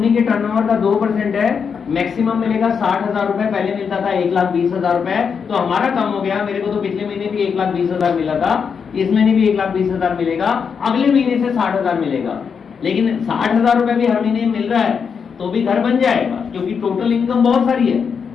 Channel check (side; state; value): right; quieter; 6.3 dB